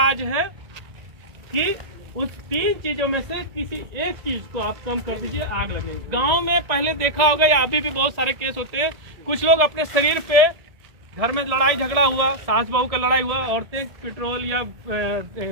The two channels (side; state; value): left; late; 1.9 ms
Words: है कि उस 3 चीजों में से किसी एक चीज को आप कम कर दीजिए, आग लगेगी। गांव में पहले देखा होगा या अभी भी बहुत सारे केस होते हैं, कुछ लोग अपने शरीर पे, घर में लड़ाई झगड़ा हुआ, सास बहू का लड़ाई हुआ, औरतें पेट्रोल या